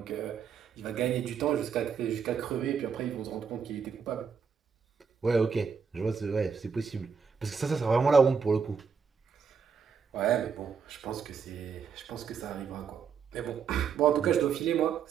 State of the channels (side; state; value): left; quieter; 6.3 dB